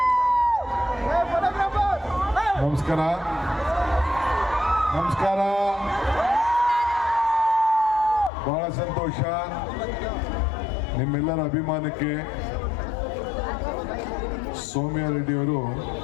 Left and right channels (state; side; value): drops out; right; at 8.3 s